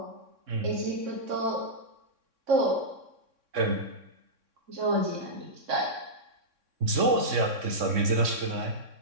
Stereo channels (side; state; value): left; late; 3.6 ms